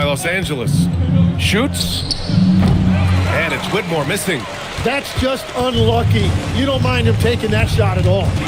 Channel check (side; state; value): both; identical; correlation 1.00